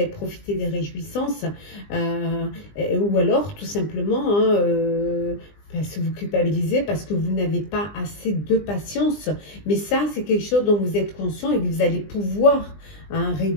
profité des réjouissances, ou alors, tout simplement, parce que vous culpabilisez, parce que vous n'avez pas assez de patience. Mais ça, c'est quelque chose dont vous êtes conscient et que vous allez pouvoir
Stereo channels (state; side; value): late; right; 20 ms